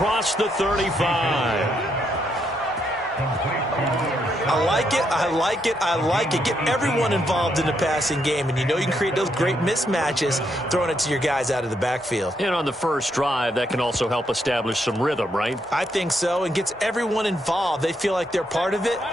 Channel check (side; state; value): both; normal; correlation 0.77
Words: the 35. I like it, I like it, I like it. Get everyone involved in the passing game, and you know you can create those great mismatches throwing it to your guys out of the backfield. And on the first drive, that can also help establish some rhythm, right? I think so, and gets everyone involved. They feel like they're part of it,